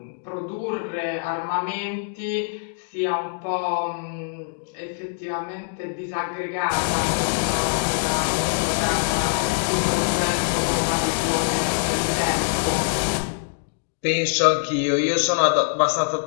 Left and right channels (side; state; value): right; silent; digital silence